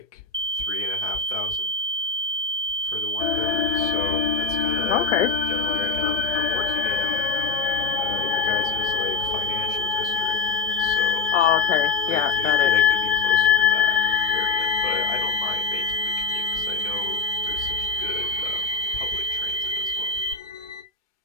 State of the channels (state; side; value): quieter; right; 4.3 dB